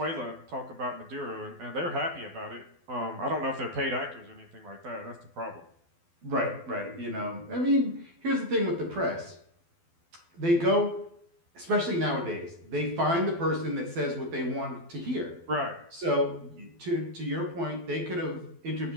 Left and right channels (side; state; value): left; late; 12 ms